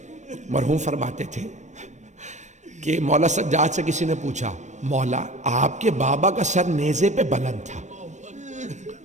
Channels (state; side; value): late; left; 0.34 ms